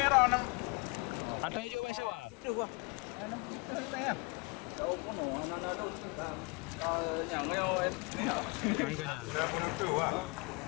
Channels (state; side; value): quieter; right; 30.3 dB